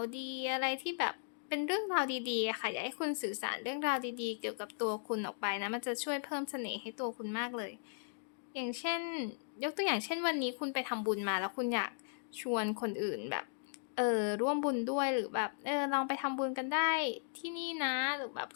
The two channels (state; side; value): silent; right; digital silence